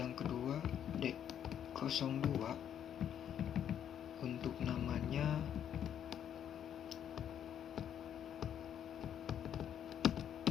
kedua D02. Untuk namanya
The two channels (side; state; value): right; quieter; 9.4 dB